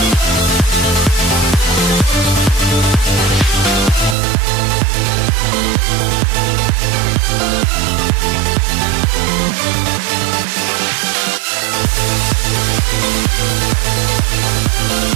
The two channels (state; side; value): drops out; left; at 4.2 s